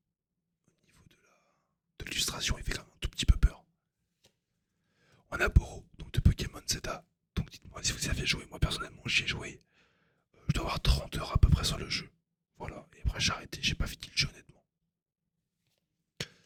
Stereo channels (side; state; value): both; identical; correlation 1.00